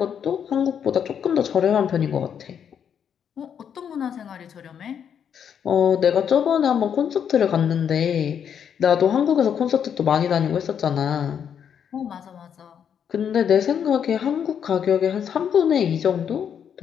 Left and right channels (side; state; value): right; quieter; 8.1 dB